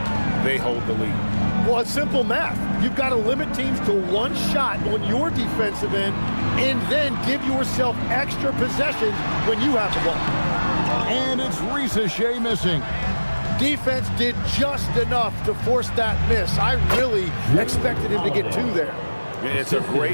they hold the lead. Well, it's simple math. You've got to limit teams to one shot on your defensive end and then give yourself extra possessions when you have the ball. And it's Ricochet missing. Defense did just enough to force that miss. I really expected him to get 2 there. It's a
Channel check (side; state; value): both; inverted; correlation -1.00